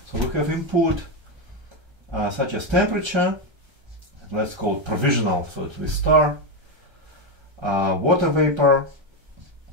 So we have input such as temperature. Let's call it provisional, so it's with star. Water vapor,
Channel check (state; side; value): late; left; 1.3 ms